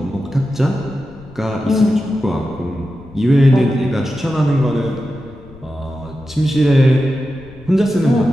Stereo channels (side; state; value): left; noise; rumble, 21 dB below the sound